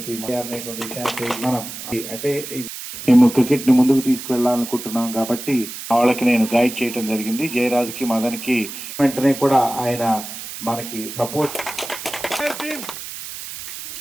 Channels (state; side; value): noise; right; hiss, 10 dB below the sound